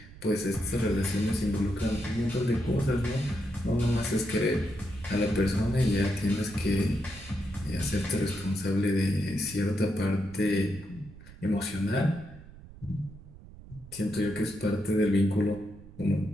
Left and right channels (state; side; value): noise; right; rumble, 18 dB below the sound